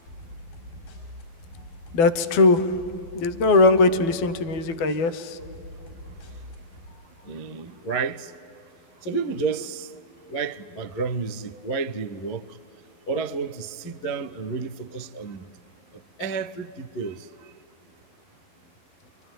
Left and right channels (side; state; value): right; late; 12 ms